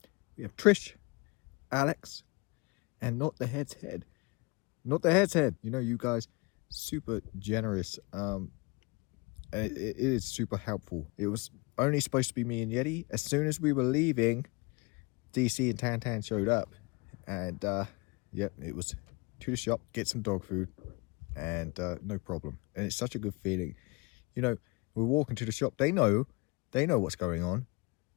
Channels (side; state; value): right; quieter; 27.3 dB